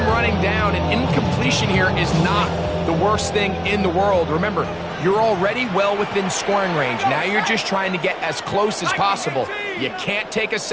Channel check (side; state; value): both; identical; correlation 1.00